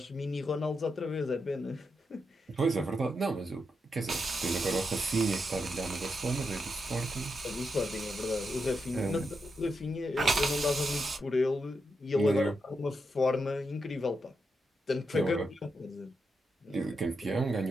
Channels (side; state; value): both; normal; correlation 0.85